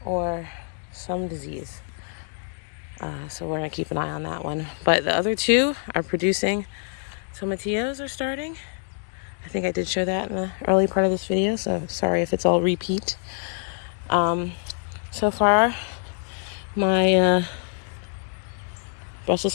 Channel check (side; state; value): right; silent; 61 dB below the other